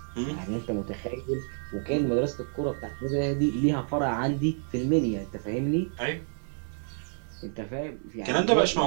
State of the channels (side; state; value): left; silent; digital silence